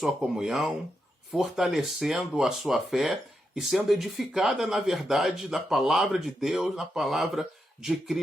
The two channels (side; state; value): both; normal; correlation 0.85